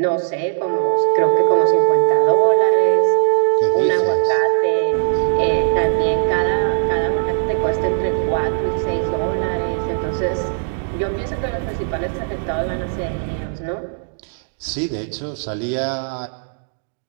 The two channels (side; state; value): left; silent; digital silence